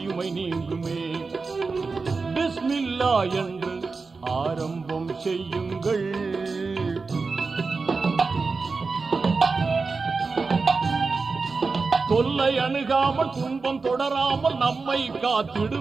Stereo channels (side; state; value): left; quieter; 4.3 dB